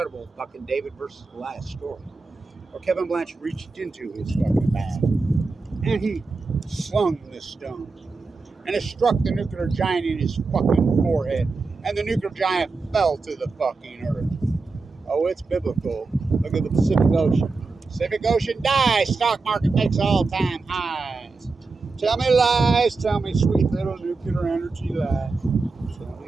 fucking David versus Goliath story. Where Kevin Blanchard reached into his fucking bag. And he slung this stone. And it struck the nuclear giant in his fucking forehead. And the nuclear giant fell to the fucking earth. Oh, it's biblical. Look at the Pacific Ocean. Pacific Ocean dies. Stock market makes all-time highs. Tell me lies. Tell me sweet little nuclear energy lies. Tell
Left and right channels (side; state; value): left; quieter; 4.0 dB